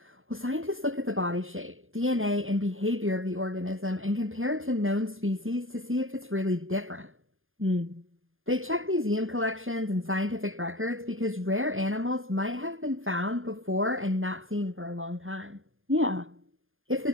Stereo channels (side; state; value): left; late; 0.59 ms